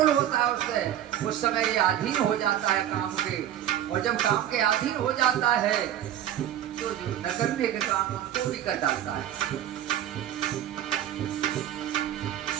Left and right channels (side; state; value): left; quieter; 11.4 dB